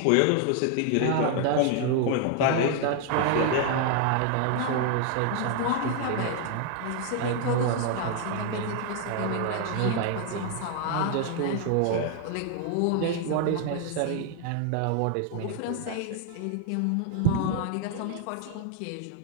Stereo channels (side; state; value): both; different; correlation 0.00